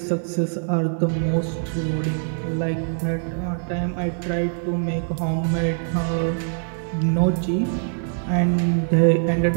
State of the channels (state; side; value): silent; left; 60 dB below the other